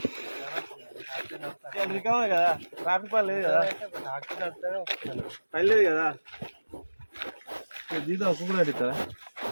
కదా ట్రాఫిక్ పని లేదు కదా, పని లేదు కదా, జీతం ఒక్క కూడా అడుగుతారా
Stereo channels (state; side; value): inverted; both; correlation -1.00